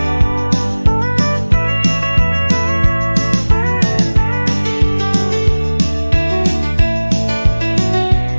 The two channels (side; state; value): both; inverted; correlation -1.00